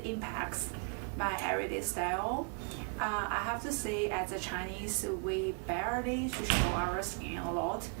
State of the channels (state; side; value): quieter; left; 37.7 dB